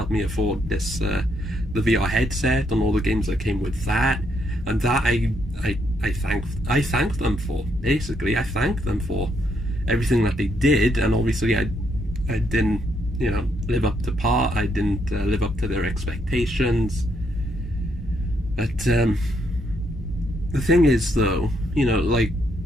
me afford this, the VR headset and all the games that came with that. And that I thank them for. Basically, I thank them for everything that they did. And obviously, I didn't, you know, live up to par. I didn't live up to their expectations. But the thing is, though, you know, like,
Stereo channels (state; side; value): normal; both; correlation 0.75